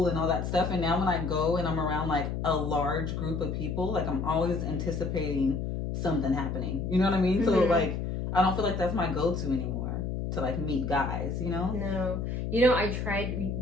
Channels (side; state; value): left; noise; hum, 3 dB below the sound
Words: and all that stuff. And now when I go and I'm around like a large group of people, like I'm always anticipating something happening. You know what I mean? Mm-hmm. So like I don't feel like that's my go-to anymore to like meet guys, you know? No. You know, I